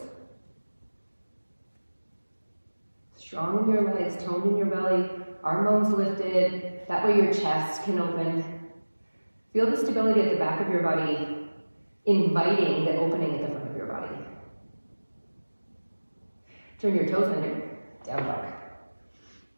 Strong in your legs, toned in your belly, arm bones lifted. That way your chest can open. Feel the stability at the back of your body, inviting the opening at the front of your body. Turn your toes under, down dog.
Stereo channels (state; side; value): inverted; both; correlation -1.00